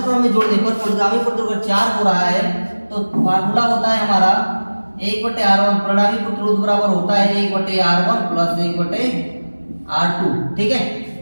क्रम में जोड़ने पर परिणामी प्रतिरोध 4 हो रहा है, तो फार्मूला होता है हमारा 1/r1, परिणामी प्रतिरोध बराबर होता है 1/r1 प्लस 1/r2। ठीक है,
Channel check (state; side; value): inverted; both; correlation -1.00